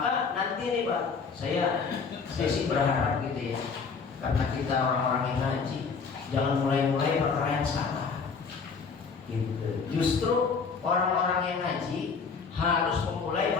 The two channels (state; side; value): quieter; right; 5.3 dB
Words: nanti nih Pak, saya sih berharap gitu ya, karena kita orang-orang yang ngaji, jangan mulai-mulai perkara yang salah. Gitu. Justru orang-orang yang ngaji harus memulai